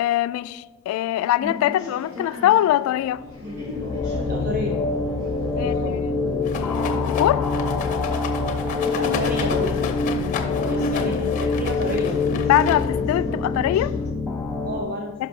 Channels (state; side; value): quieter; right; 5.9 dB